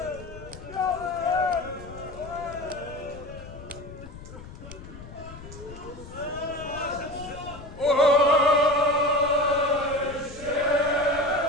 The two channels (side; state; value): left; noise; rumble, 15 dB below the sound